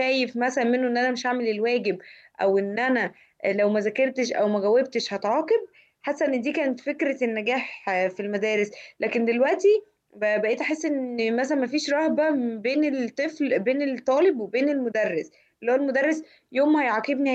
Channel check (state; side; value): identical; both; correlation 1.00